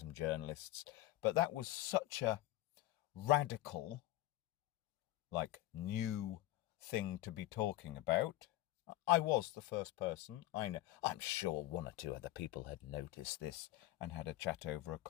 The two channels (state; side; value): quieter; right; 15.9 dB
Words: journalists. But that was such a radical, new thing to be talking about. I was the first person. I know. I'm sure 1 or 2 other people had noticed this and had a chat over a